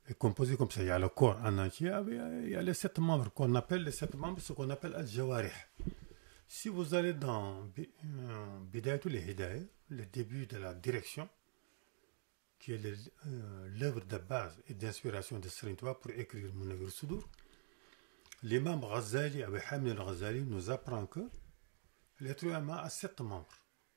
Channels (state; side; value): silent; left; digital silence